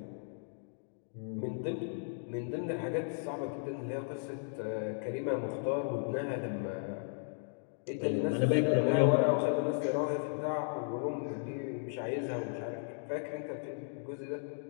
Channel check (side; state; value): right; silent; digital silence